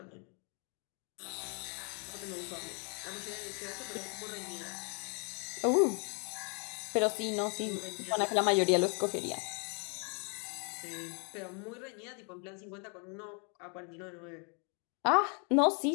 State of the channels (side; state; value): right; quieter; 36.7 dB